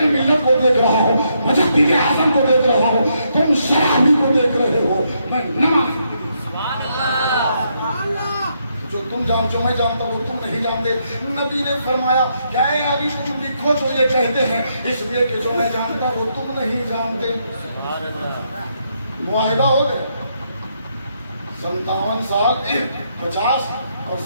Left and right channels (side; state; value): both; inverted; correlation -0.77